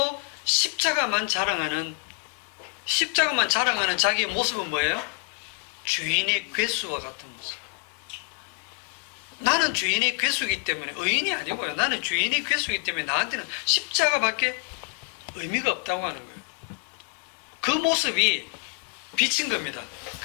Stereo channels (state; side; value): quieter; right; 36.9 dB